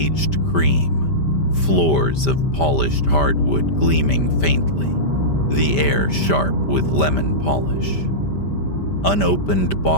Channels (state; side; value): late; right; 5.1 ms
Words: cream, floors of polished hardwood gleaming faintly, the air sharp with lemon polish. Unopened